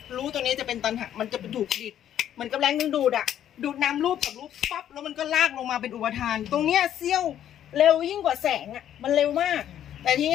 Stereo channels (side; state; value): right; quieter; 10.7 dB